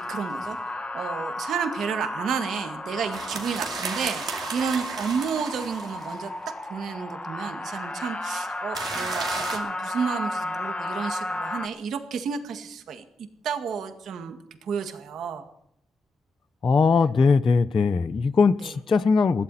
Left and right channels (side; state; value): both; normal; correlation 0.80